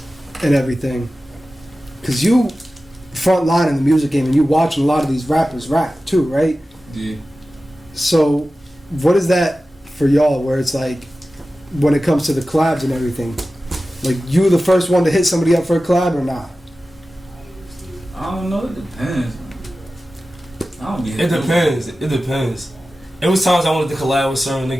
and everything, because you front line in the music game and you watching a lot of these rappers rap too, right? Yeah. So, what is that for y'all? Where it's like, when it comes to the collabs and everything, like you the first one to hit somebody up for a collab or not? I don't know. It depends. I don't be. It depends. It depends. It was times I wanted to collab with certain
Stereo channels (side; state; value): both; normal; correlation 0.95